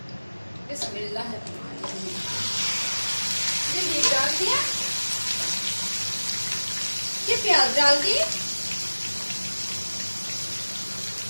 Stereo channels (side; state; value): both; inverted; correlation -1.00